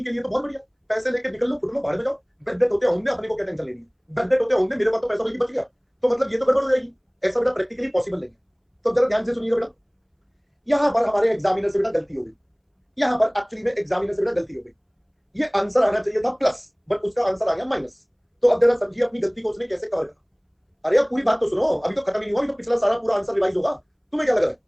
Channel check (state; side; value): identical; both; correlation 1.00